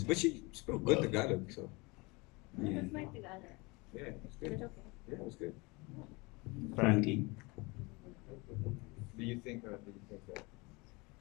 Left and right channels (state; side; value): quieter; right; 26.1 dB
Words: But she spoke good Tagalog, so. Yeah. That's my Tagalog. Yeah, it was good. Yeah, it was good. Frankie? Do you think that